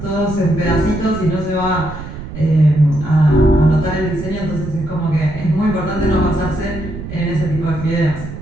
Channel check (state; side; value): noise; right; rumble, 10 dB below the sound